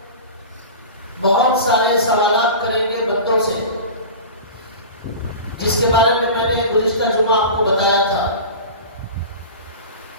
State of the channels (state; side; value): inverted; both; correlation -0.33